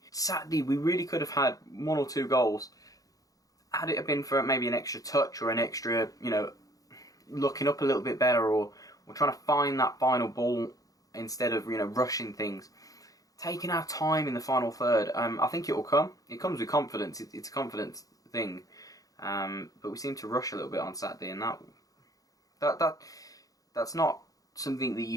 Saturday we really could have had 1 or 2 goals had it have been for maybe an extra touch or an extra, you know, looking up a little bit better, or trying to find that final ball instead of, you know, rushing things. Taking our time in the final third. I think it will come. It comes with confidence. It's a confidence thing. But we seem to rush a little bit on Saturday, and that's not something that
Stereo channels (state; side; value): late; right; 0.17 ms